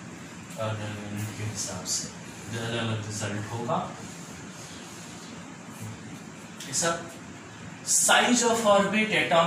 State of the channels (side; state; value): both; identical; correlation 1.00